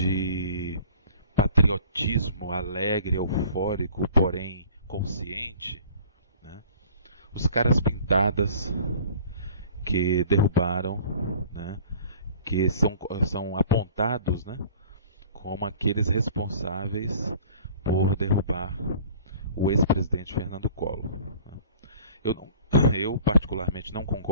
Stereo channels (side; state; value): both; inverted; correlation -0.49